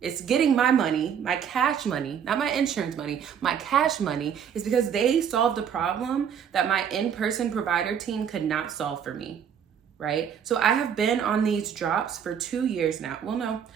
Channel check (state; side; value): quieter; left; 8.1 dB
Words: It's getting my money, my cash money, not my insurance money, my cash money, is because they solved a problem that my in-person provider team could not solve for me, right? So I have been on these drops for 2 years now. Well, no,